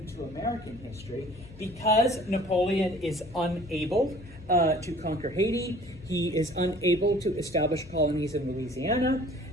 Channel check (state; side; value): noise; left; hum, 20 dB below the sound